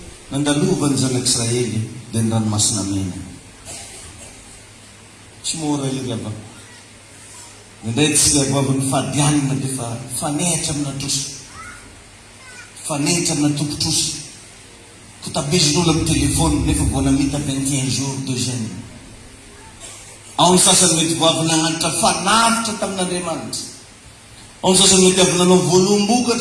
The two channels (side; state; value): both; identical; correlation 1.00